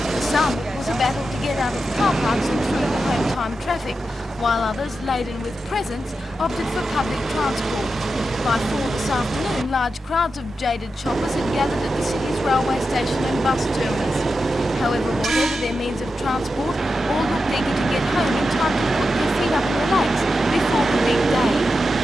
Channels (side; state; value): both; normal; correlation 0.89